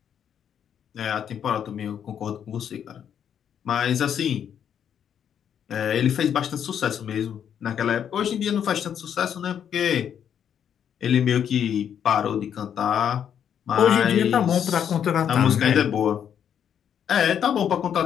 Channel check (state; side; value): quieter; right; 8.8 dB